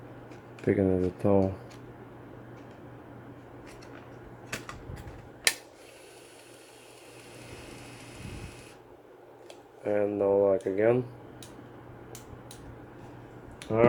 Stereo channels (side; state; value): both; identical; correlation 1.00